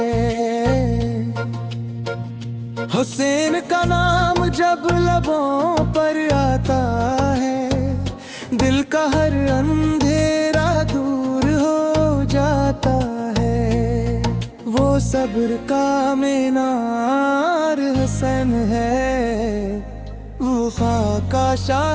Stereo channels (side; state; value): both; identical; correlation 1.00